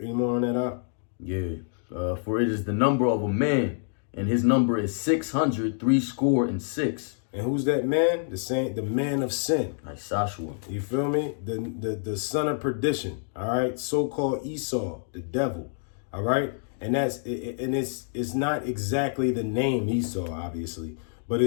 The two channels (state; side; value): silent; right; digital silence